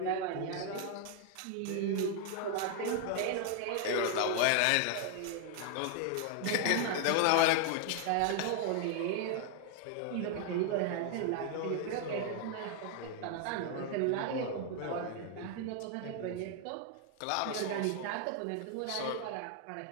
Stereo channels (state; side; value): different; both; correlation 0.00